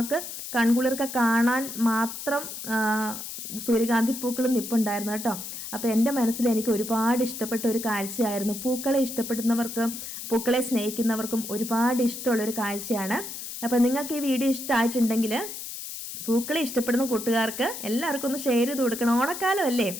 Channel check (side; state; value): left; noise; hiss, 8 dB below the sound